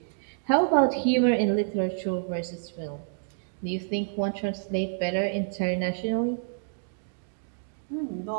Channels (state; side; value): silent; left; digital silence